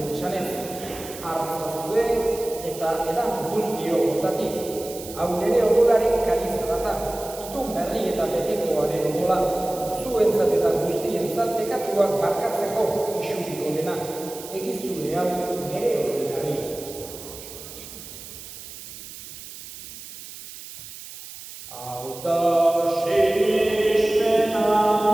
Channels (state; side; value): noise; right; hiss, 14 dB below the sound